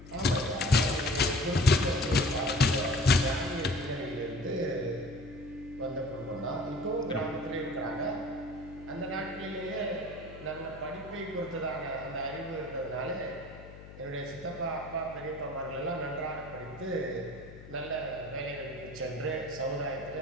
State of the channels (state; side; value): noise; left; hum, 16 dB below the sound